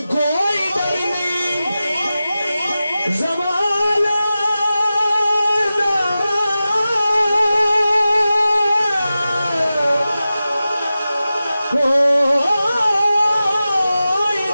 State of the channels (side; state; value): both; inverted; correlation -0.94